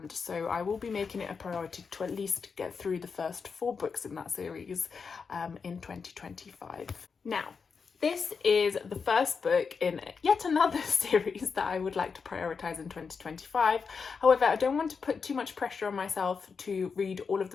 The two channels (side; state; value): right; quieter; 5.5 dB